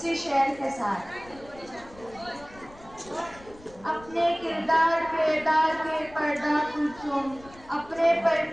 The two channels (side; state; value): left; noise; rumble, 22 dB below the sound